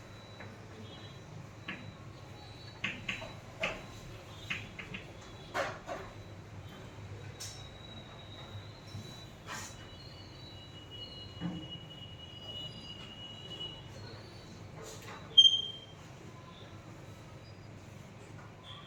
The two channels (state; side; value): identical; both; correlation 1.00